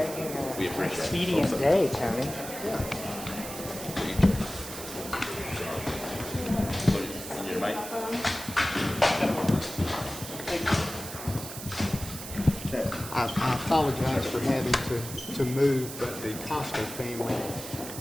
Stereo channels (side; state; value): right; noise; hiss, 10 dB below the sound